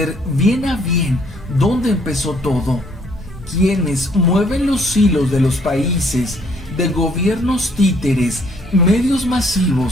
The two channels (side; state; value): both; normal; correlation 0.64